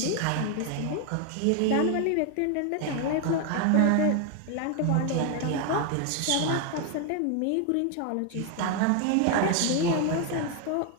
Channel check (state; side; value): different; both; correlation 0.01